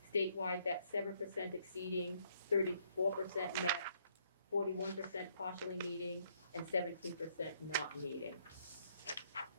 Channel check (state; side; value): inverted; both; correlation -0.70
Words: Statewide, that's 7% exceeding, 34% met, 41% partially meeting, and 17% not meeting.